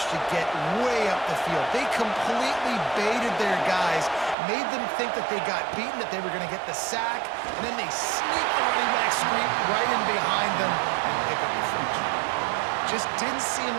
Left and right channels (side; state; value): left; drops out; at 4.4 s